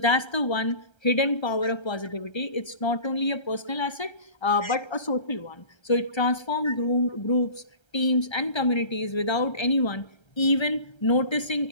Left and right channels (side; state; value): right; late; 1.3 ms